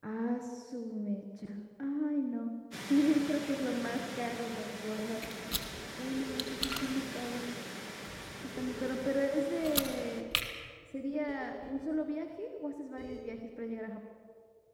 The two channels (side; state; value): both; identical; correlation 1.00